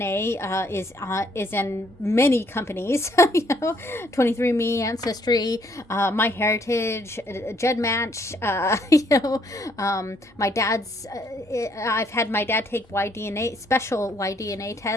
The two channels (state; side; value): normal; both; correlation 0.68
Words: is in many companies. You know, 23andMe, Ancestry, My Heritage, GEDmatch. You know, my dad's. I've had my dad take special Y-DNA